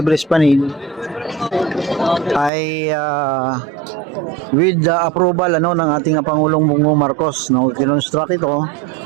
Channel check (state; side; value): drops out; left; at 2.5 s